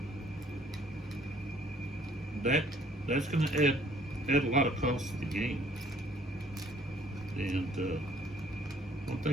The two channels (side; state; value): both; normal; correlation 0.60